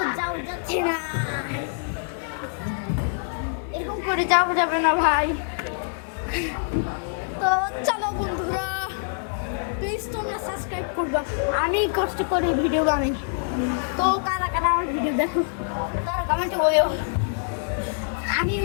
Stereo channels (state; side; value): silent; right; 62 dB below the other